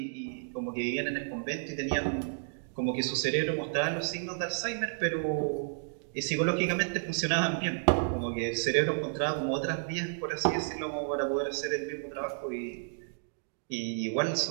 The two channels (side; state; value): left; silent; digital silence